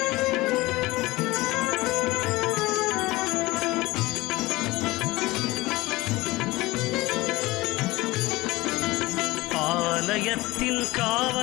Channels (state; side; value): quieter; right; 20.2 dB